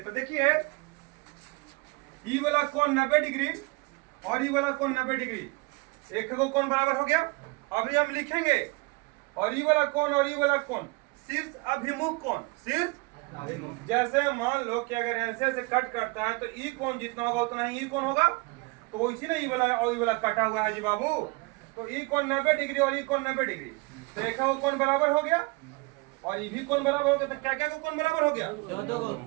देखिए ये वाला कोण 90 डिग्री और ये वाला कोण 90 डिग्री, एक को कोण बराबर हो गया। अभी हम लिखेंगे और ये वाला कोण और ये वाला कोण शीर्ष अभिमुख कोण, शीर्ष अभिमुख। जैसे मान लो कि अगर ऐसे ऐसे कट करता है तो ई कोण जितना होगा उतना ही ई कोण होगा, तो इसी ना ये वाला और ये वाला कटा हुआ है जी बाबू, तो ई कोण 90 डिग्री और ई कोण 90 डिग्री, तो एक को कोण बराबर हो गया और ये भी कोण बराबर हो गया। तो क्या क्या कोण बराबर हो गया?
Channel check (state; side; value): quieter; left; 26.7 dB